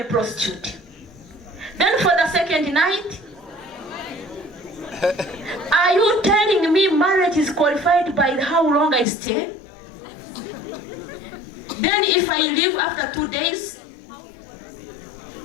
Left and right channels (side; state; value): right; drops out; at 9.1 s